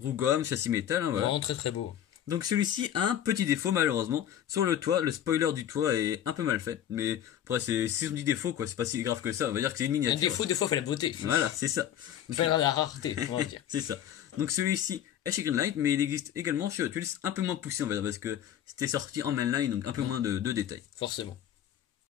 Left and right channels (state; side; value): quieter; right; 10.6 dB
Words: gomme, châssis métal, hein, voilà. Vraiment très très beau. Donc celui-ci a un petit défaut malheureusement. Sur le toit, le spoiler du toit est un peu mal fait. Mais après, si on dit défaut, quoi, c'est pas si grave que ça. On va dire que c'est une miniature. Un défaut, des fois, fait la beauté. Voilà, c'est ça. Fait la rareté, on va dire. C'est ça. Donc celui-ci est chez Greenlight, mais il existe également chez Hot Wheels, un peu moins poussé on va dire, parce que c'était sorti en mainline, donc un peu moins de détails. Forcément.